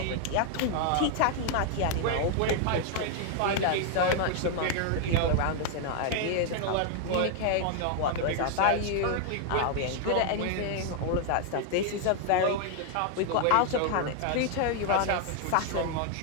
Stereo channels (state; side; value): different; both; correlation 0.00